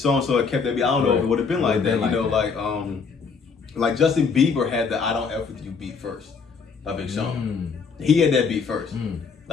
had kept that beat. I don't know if it would have been like that. You know, like Justin Bieber had the I Don't F With You beat first. By Big Sean. He had that beat first.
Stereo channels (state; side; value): quieter; right; 5.4 dB